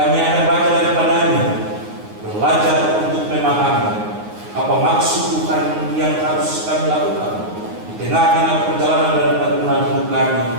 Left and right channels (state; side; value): late; left; 9.6 ms